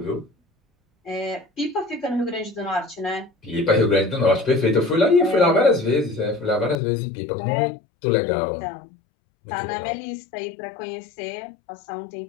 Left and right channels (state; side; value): drops out; right; at 6.8 s